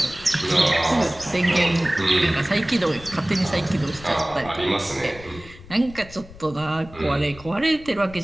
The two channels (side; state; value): left; noise; rumble, 18 dB below the sound